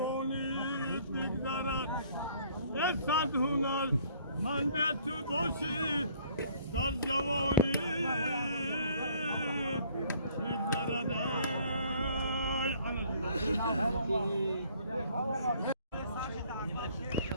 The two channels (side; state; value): both; inverted; correlation -0.59